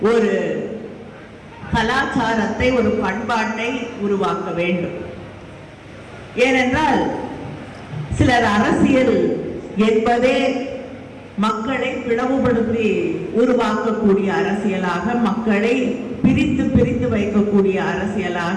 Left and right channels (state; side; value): identical; both; correlation 1.00